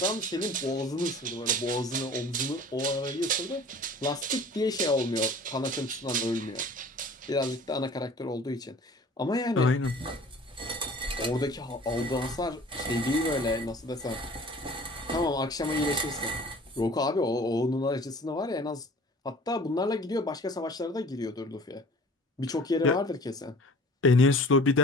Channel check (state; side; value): normal; both; correlation 0.46